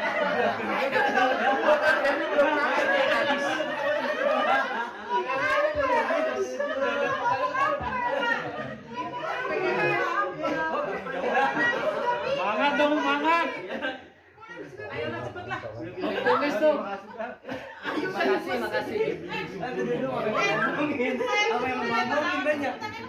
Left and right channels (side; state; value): both; identical; correlation 1.00